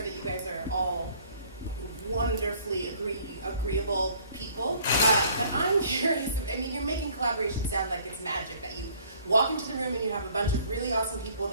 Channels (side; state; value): both; inverted; correlation -0.57